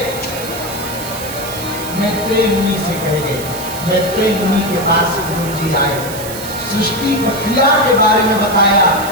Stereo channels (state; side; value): noise; right; hiss, 11 dB below the sound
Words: मैत्रेय मुनि से कह गए। मैत्रेय मुनि के पास विदुर जी आए, सृष्टि प्रक्रिया के बारे में बताया,